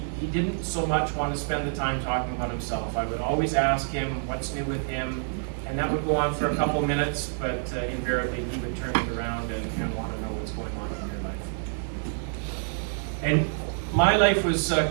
didn't so much want to spend the time talking about himself. I would always ask him what's new with him, and that would go on for a couple of minutes, but invariably he would turn it around and want to know what's going on in your life. And my life was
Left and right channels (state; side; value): silent; left; digital silence